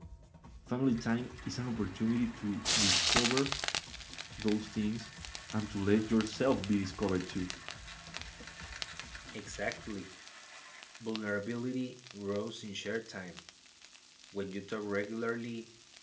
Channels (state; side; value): identical; both; correlation 1.00